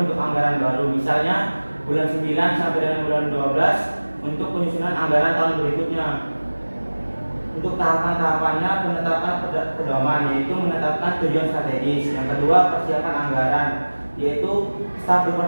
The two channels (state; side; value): inverted; both; correlation -1.00